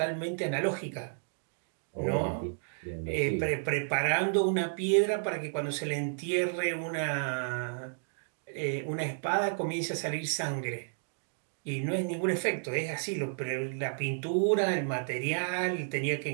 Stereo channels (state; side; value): silent; left; digital silence